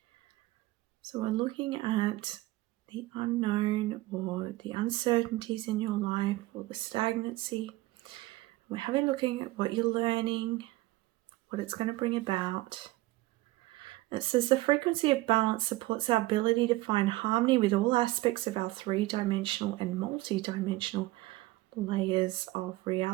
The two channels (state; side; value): quieter; left; 18.8 dB